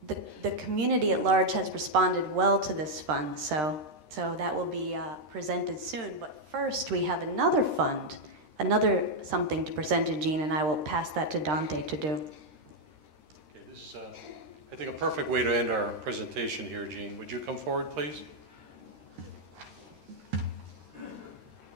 community at large has responded well to this fund. So that will be presented soon. But first, we have another fund, another something to present to Jean, and I will pass that to Dante to do. Okay, this is, I think, a perfect way to end our presentation here, Jean. Would you come forward, please?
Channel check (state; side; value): late; left; 13 ms